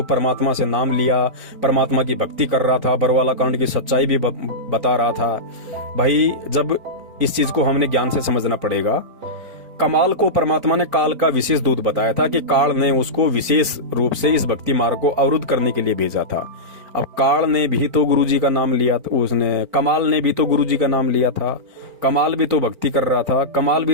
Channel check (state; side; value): late; left; 4.4 ms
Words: परमात्मा से नाम लिया, परमात्मा की भक्ति कर रहा था, बरवाला कांड की सच्चाई भी बता रहा था। भाई जब इस चीज को हमने ज्ञान से समझना पड़ेगा। कमाल को परमात्मा ने काल का विशेष दूत बताया था कि काल ने उसको विशेष रूप से इस भक्ति मार्ग को अवरुद्ध करने के लिए भेजा था। अब काल ने भी तो गुरुजी का नाम लिया था, उसने कमाल ने भी तो गुरुजी का नाम लिया था, कमाल भी तो भक्ति कर रहा था, कमाल भी